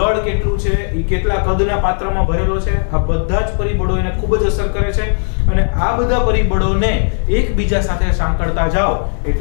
કેટલું છે, એ કેટલા કદના પાત્રમાં ભરેલો છે. આ બધા જ પરિબળો એને ખૂબ જ અસર કરે છે, અને આ બધા પરિબળોને એકબીજા સાથે સાંકળતા જાઓ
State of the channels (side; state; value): right; silent; 69 dB below the other